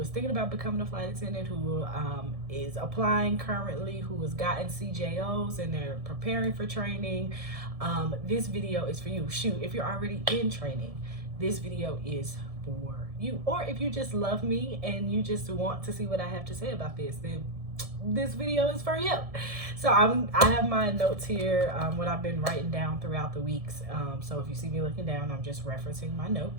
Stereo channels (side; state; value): left; late; 1.7 ms